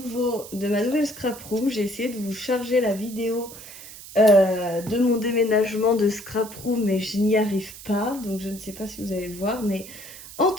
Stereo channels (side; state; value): right; noise; hiss, 15 dB below the sound